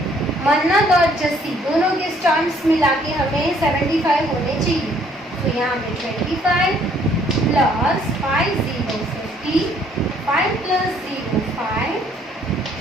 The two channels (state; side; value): normal; both; correlation 0.63